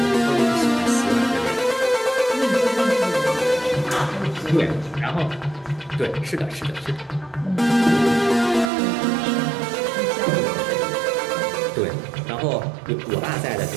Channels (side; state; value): left; drops out; at 8.7 s